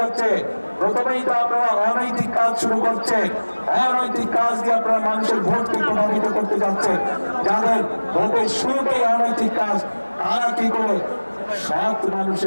প্রথমেই তো আপনারা অনৈতিক কাজ শুরু করছেন, অনৈতিক কাজ দিয়ে আপনারা মানুষের ভোটকে প্রভাবিত করতে যাচ্ছেন। যাদের ভোটের শুরুতেই অনৈতিক কাজ, তারা কি করে সৎ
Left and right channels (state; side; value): inverted; both; correlation -1.00